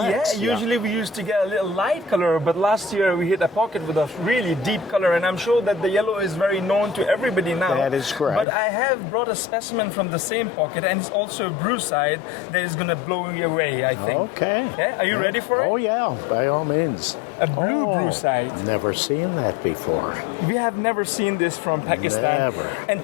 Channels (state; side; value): drops out; right; at 8.5 s